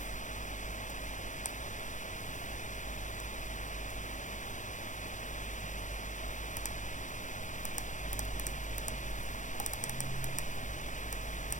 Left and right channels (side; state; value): right; late; 0.36 ms